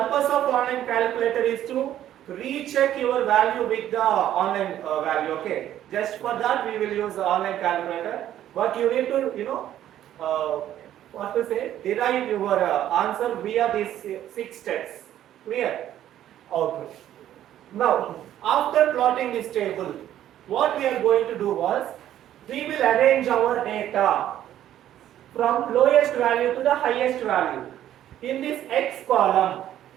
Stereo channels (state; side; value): quieter; left; 11.8 dB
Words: of online calculator is to recheck your value with the online value. Okay, just for that we will use the online calculator, but you need to derive your answer via these 6 steps. Clear? Okay. Now after plotting this table, what we are going to do was we will arrange our data from lowest value to the highest value in this x column.